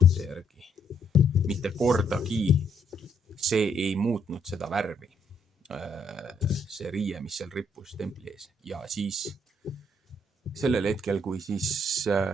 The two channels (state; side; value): normal; both; correlation 0.71